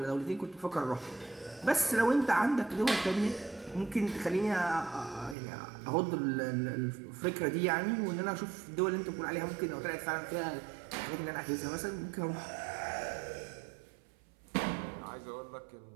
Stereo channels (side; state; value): left; drops out; at 5.4 s